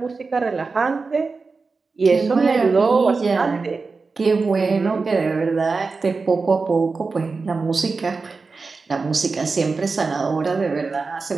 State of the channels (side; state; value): left; quieter; 4.3 dB